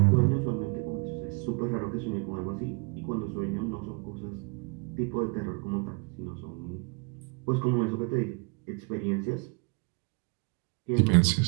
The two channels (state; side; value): quieter; left; 32.8 dB